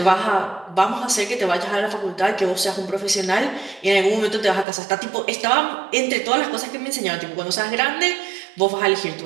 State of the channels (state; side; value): drops out; left; at 4.7 s